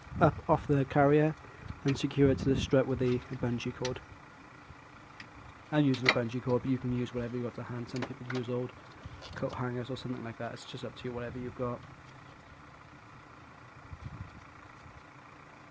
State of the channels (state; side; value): identical; both; correlation 1.00